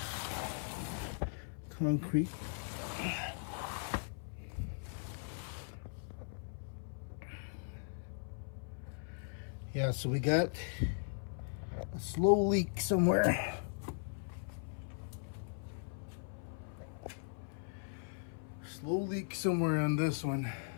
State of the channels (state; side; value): silent; right; 52 dB below the other